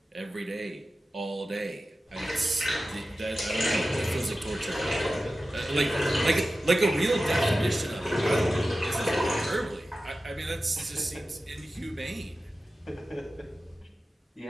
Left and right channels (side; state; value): both; normal; correlation 0.94